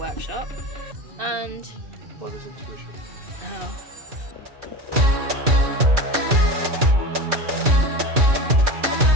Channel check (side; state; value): left; late; 2.4 ms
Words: and... Well, there's intuition. Oh.